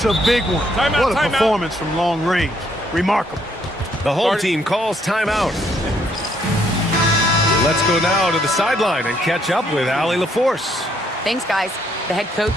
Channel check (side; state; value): both; normal; correlation 0.70